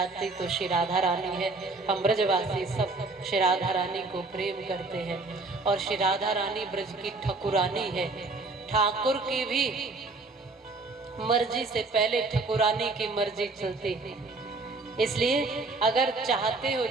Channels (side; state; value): left; quieter; 3.5 dB